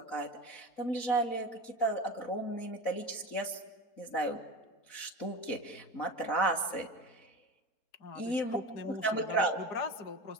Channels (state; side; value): late; right; 4.0 ms